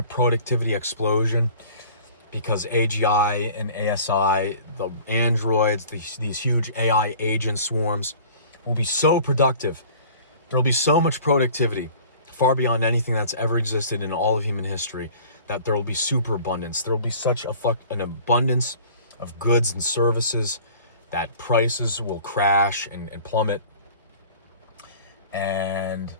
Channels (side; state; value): both; inverted; correlation -0.47